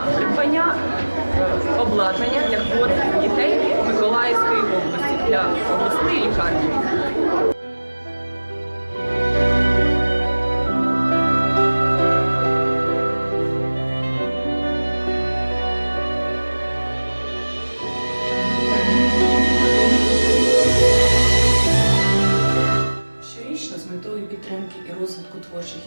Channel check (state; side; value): inverted; both; correlation -1.00